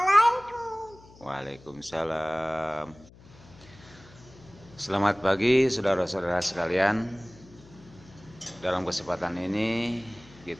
Waalaikumsalam. Selamat pagi saudara-saudara sekalian. Dalam kesempatan ini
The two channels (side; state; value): left; noise; hum, 23 dB below the sound